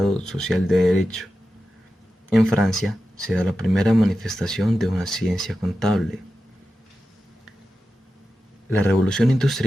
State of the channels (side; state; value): both; normal; correlation 0.92